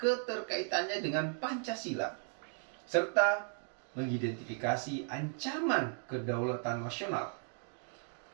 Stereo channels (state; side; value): silent; left; 54 dB below the other